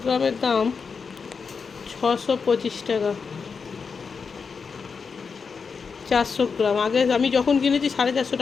গ্রামের দাম 625 টাকা, 400 গ্রাম। আগে আমি যখন কিনেছি 450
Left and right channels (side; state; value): right; quieter; 5.5 dB